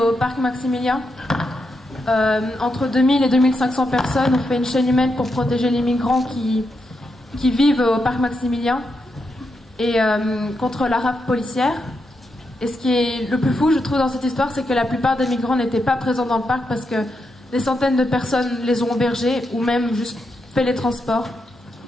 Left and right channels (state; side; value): normal; both; correlation 0.84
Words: parc Maximilien. Entre 2000 et 2500 personnes ont fait une chaîne humaine pour protéger les migrants qui vivent au parc Maximilien et contre la rafle policière. Et ce qui est le plus fou, je trouve, dans cette histoire, c'est que la plupart des migrants n'étaient pas présents dans le parc parce que des centaines de personnes les ont hébergés ou même juste fait les transports.